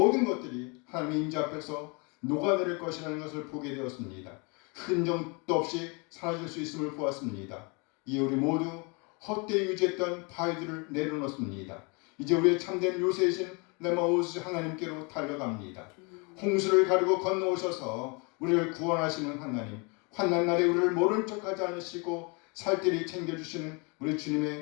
것들이 하나님의 임재 앞에서 녹아내릴 것이라는 것을 보게 되었습니다. 흔적도 없이 사라질 수 있음을 보았습니다. 이에 우리 모두 헛되이 유지했던 바위들을 내려놓습니다. 이제 우리의 참된 요새이신 레마우스 하나님께로 달려갑니다. 홍수를 가르고 건너오셔서 우리를 구원하시는 하나님, 환난 날에 우리를 모른 척하지 않으시고 살뜰히 챙겨주시는 우리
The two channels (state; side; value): quieter; right; 31.3 dB